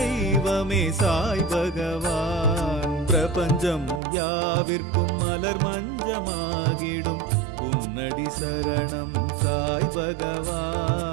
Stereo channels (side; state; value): left; drops out; at 4.0 s